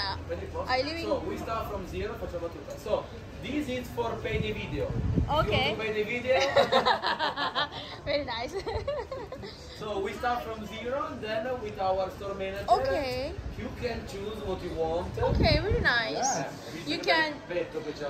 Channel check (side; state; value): both; identical; correlation 1.00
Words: I live in. So we start from zero. Facciamo tutto. So this is for pay the video. Okay. You want to pay the video? Very nice. So we start from zero, and then with our store manager, Okay. you can choose what you want. Okay, very nice. Yeah. You can.